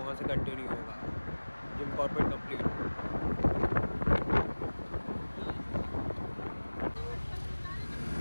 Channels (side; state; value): both; inverted; correlation -1.00